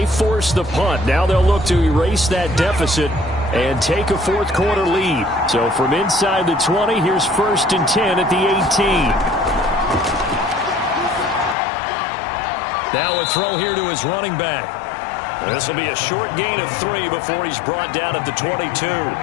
forced the punt. Now they'll look to erase that deficit and take a fourth quarter lead. So from inside the 20, here's 1st and 10 at the 18. Now a throw here to his running back. This will be a short gain of 3 before he's brought down at the 22.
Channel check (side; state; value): right; drops out; at 11.6 s